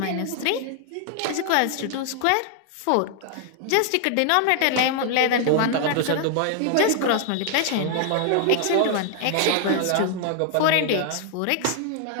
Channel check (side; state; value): both; different; correlation 0.00